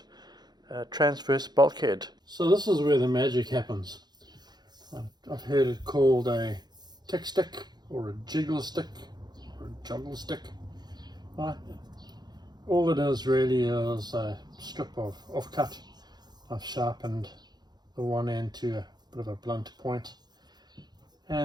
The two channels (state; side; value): late; left; 0.20 ms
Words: transverse bulkhead. So this is where the magic happens. I've heard it called a tick stick or a jiggle stick or a juggle stick. Right? All it is really is a strip of offcut. I've sharpened the one end to a bit of a blunt point,